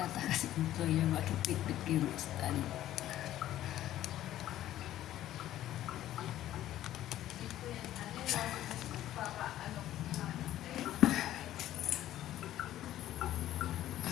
si employer makipit-pit kayo ng stand.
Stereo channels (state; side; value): quieter; right; 13.1 dB